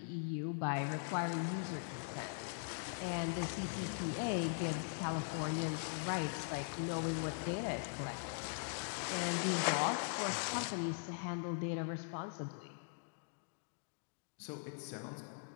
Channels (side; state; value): right; silent; digital silence